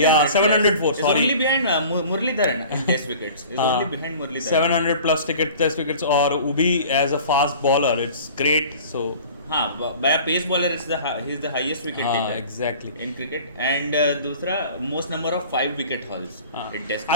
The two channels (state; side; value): inverted; both; correlation -0.44